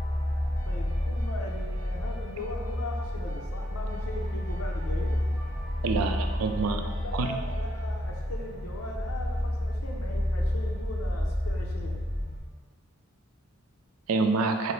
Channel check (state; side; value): normal; both; correlation 0.75